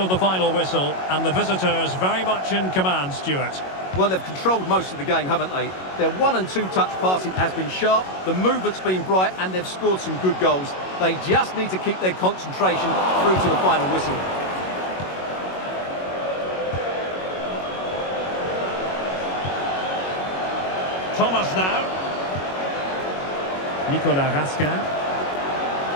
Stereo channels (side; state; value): right; late; 22 ms